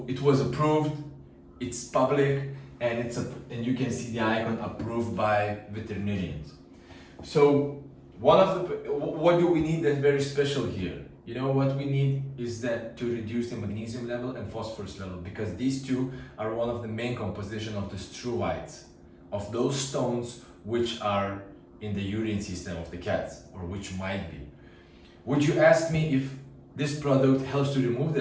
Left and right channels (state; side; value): identical; both; correlation 1.00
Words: it was approved, it's public, and and you can see the icon approved by veterinarians. So what do we need that's very special here? What we need is that to reduce the magnesium level and phosphorus level, because these two are one of the main composition of the struvites, of those stones which are in the urine system of the cats, or which might be. Would you ask me if this product helps to remove